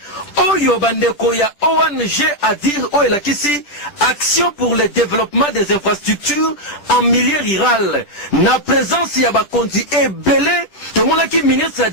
oyo bandeko ya ONG ADIR oyo elakisi action pour le développement des infrastructures en milieu rural na présence ya bakonzi ebele tomonaki ministre ya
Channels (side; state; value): right; late; 10 ms